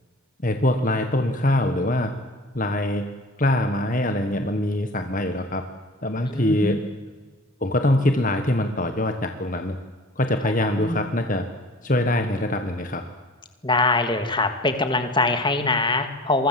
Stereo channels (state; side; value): normal; both; correlation 0.43